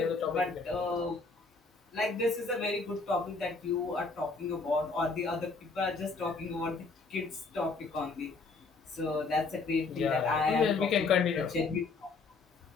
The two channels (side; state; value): right; quieter; 4.1 dB